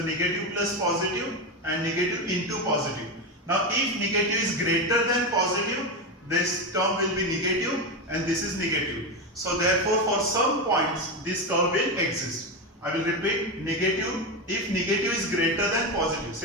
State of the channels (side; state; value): both; normal; correlation 0.14